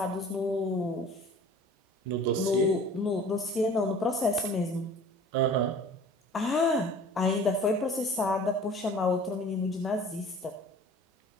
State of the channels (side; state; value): both; normal; correlation 0.46